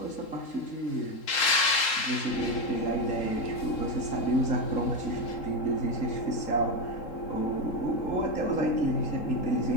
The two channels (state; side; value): late; right; 3.7 ms